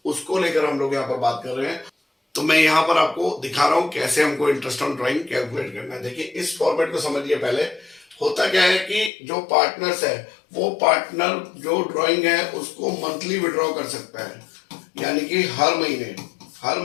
उसको लेकर हम लोग यहाँ पर बात कर रहे हैं। तो मैं यहाँ पर आपको दिखा रहा हूँ कैसे हमको इंटरेस्ट ऑन ड्राइंग कैलकुलेट करना है। देखिए इस फॉर्मेट को समझिए। पहले होता क्या है कि जो पार्टनर्स है, वो पार्टनर जो ड्राइंग है उसको मंथली विड्रॉ कर सकता है, यानी कि हर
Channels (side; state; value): right; drops out; at 9.1 s